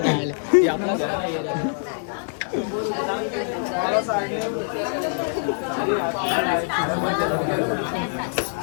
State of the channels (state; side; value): silent; right; digital silence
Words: हे आपला घर